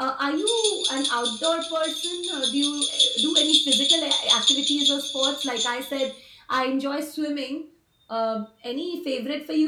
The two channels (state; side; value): identical; both; correlation 1.00